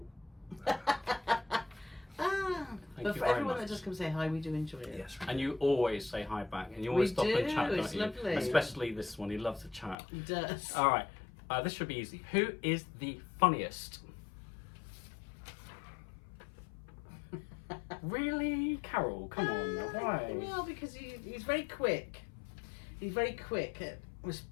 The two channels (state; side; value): drops out; right; at 10.0 s